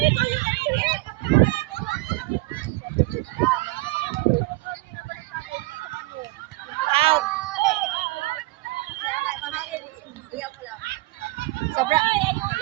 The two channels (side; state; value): left; quieter; 21.5 dB